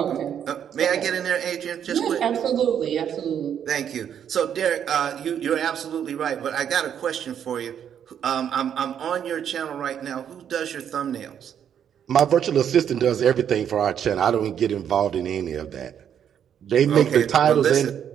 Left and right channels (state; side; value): quieter; left; 8.9 dB